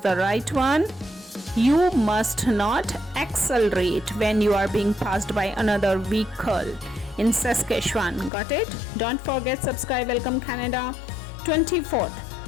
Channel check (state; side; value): drops out; right; at 8.3 s